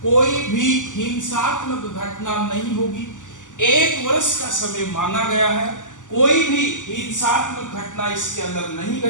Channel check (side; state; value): right; late; 0.87 ms